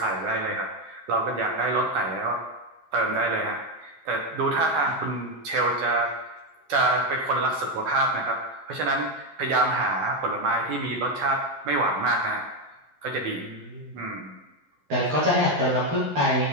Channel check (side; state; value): left; late; 13 ms